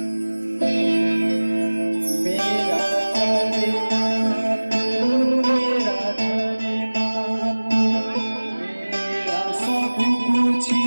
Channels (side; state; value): both; inverted; correlation -1.00